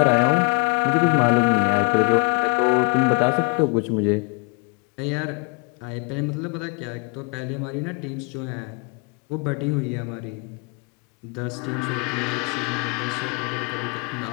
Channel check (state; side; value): quieter; right; 34.2 dB